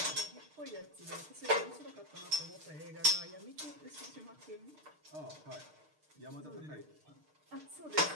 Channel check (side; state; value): left; late; 6.6 ms